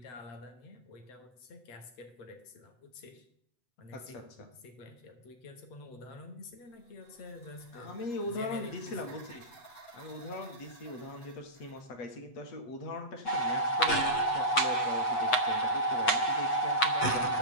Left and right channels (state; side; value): late; right; 8.0 ms